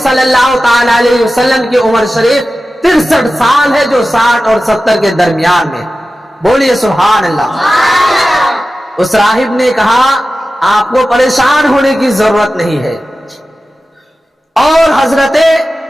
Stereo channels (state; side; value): normal; both; correlation 0.94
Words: صلی اللہ تعالی علیہ وسلم کی عمر شریف 63 سال ہے جو 60 اور 70 کے درمیان میں۔ بولیے سبحان اللہ۔ اس راہب نے کہا آپ کو پریشان ہونے کی ضرورت نہیں ہے۔ اور حضرت